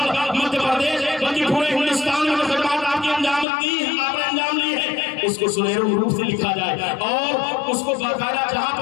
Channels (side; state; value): right; drops out; at 3.5 s